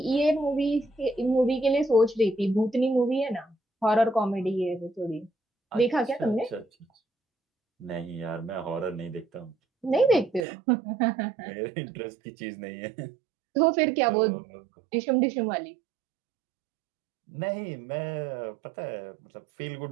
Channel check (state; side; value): drops out; left; at 10.5 s